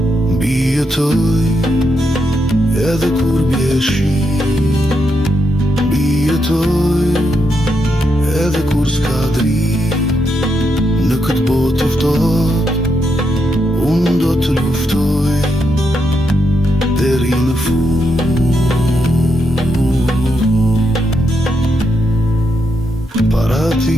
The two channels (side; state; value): both; normal; correlation 0.81